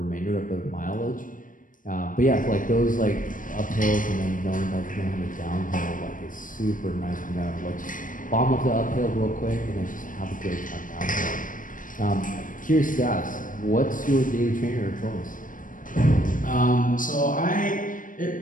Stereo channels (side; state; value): right; late; 0.39 ms